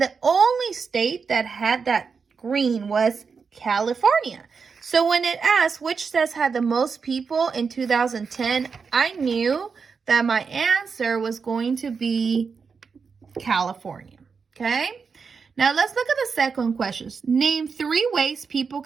the only state that had that green was California. So when it asked which state had the most people in 2010, I knew that my answer was going to be California. Okay? Now let's look at the second question. Name 3 ways people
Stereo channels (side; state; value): left; quieter; 5.5 dB